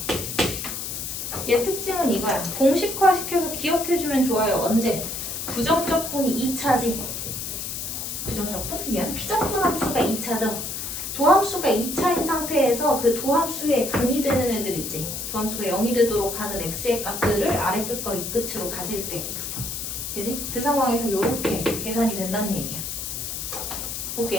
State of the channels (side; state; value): left; noise; hiss, 5 dB below the sound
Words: 얘 특징은 이거야. 공식화시켜서 기억해주면 좋아요. 언제? 부정적분이 2차지. 부정적분? 미안. 피적분 함수가 2차죠. 도함수가 2차인 상태에서 그 도함수의 근이 되는 애들 있지. 도함수가 0이 되도록 하는 x의 값들을 아래 끝과 위 끝으로 가질 때. 그지? 그 상황에서 이렇게 계산이 된다는 얘기야.